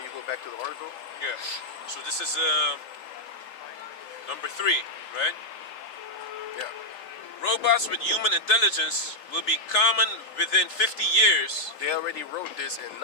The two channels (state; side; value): late; right; 3.5 ms